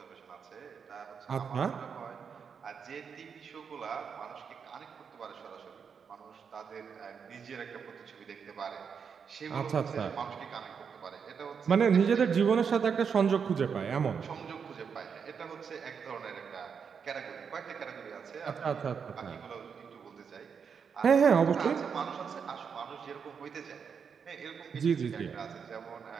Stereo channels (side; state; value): left; quieter; 6.5 dB